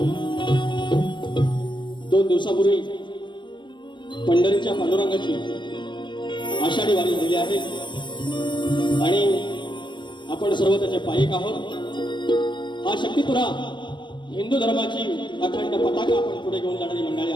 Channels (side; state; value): right; late; 0.23 ms